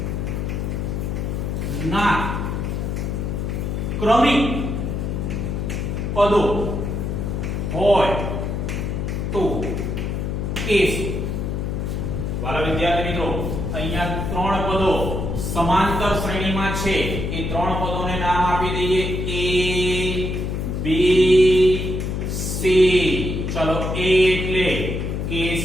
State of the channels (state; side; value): noise; left; hum, 2 dB below the sound